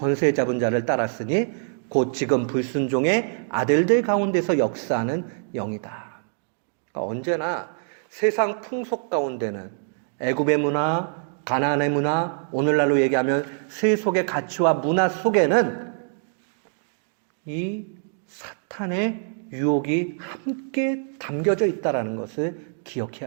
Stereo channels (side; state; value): left; silent; digital silence